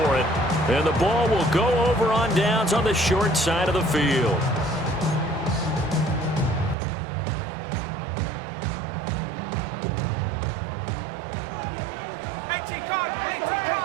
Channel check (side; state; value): left; drops out; at 6.8 s